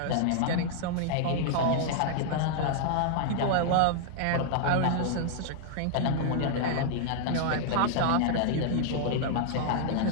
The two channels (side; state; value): both; different; correlation -0.01